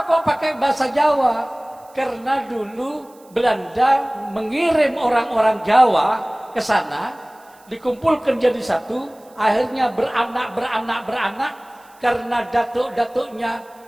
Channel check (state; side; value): noise; right; hiss, 29 dB below the sound